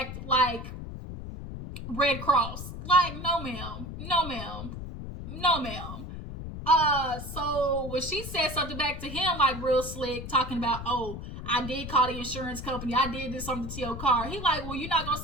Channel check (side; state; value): left; noise; rumble, 9 dB below the sound